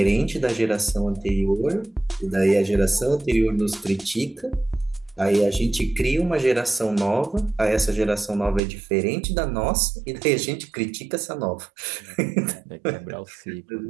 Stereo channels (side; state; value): left; drops out; at 8.6 s